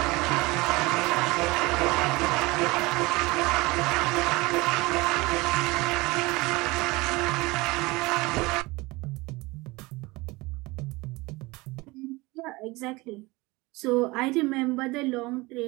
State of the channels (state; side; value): quieter; left; 22.8 dB